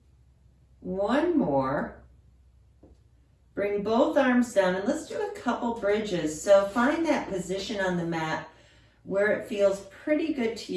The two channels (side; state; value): both; identical; correlation 1.00